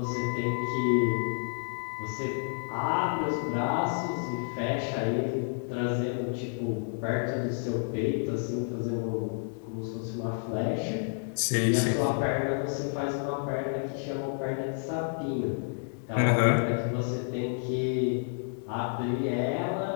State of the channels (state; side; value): silent; right; 58 dB below the other